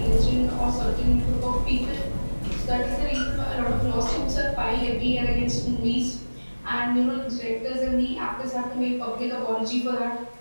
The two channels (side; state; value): both; inverted; correlation -1.00